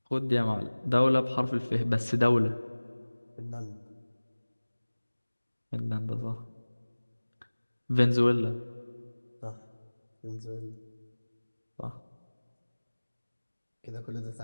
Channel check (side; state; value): both; inverted; correlation -1.00